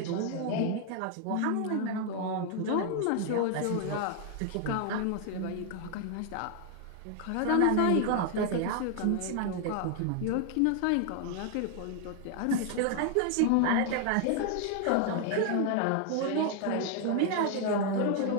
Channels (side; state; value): both; different; correlation 0.00